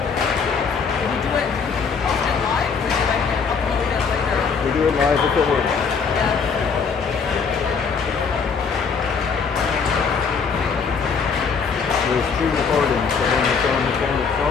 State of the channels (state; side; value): quieter; right; 5.7 dB